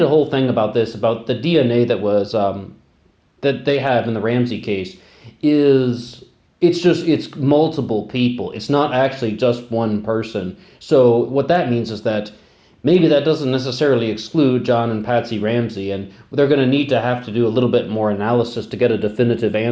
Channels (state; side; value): identical; both; correlation 1.00